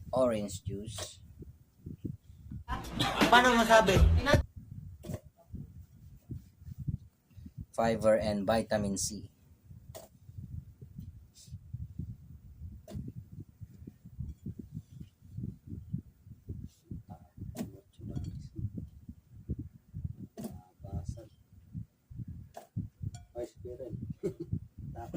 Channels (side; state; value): both; identical; correlation 1.00